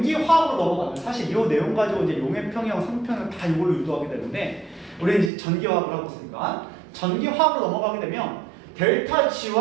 넘어가면, 사실 이 내용 가지고 이제 용해평형, 상평형 다 이걸로 유도하게 되는데, 우리는 이제 전기화학을 하고 있으니까, 전기화학으로 넘어가게 되면, 델타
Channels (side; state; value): left; drops out; at 5.3 s